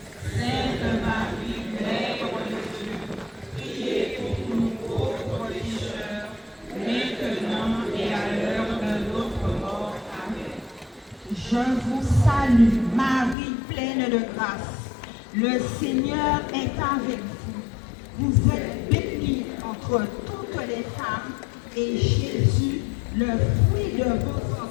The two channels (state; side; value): drops out; right; at 13.4 s